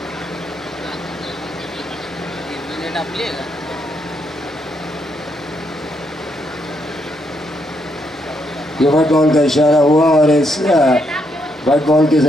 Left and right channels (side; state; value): both; normal; correlation 0.77